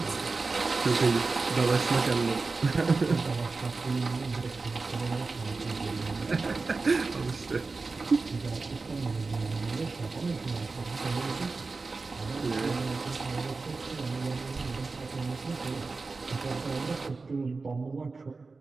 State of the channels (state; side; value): quieter; left; 4.0 dB